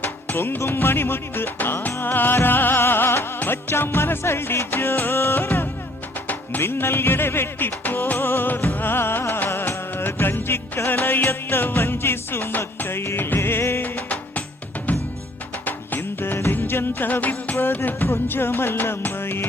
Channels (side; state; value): both; normal; correlation 0.59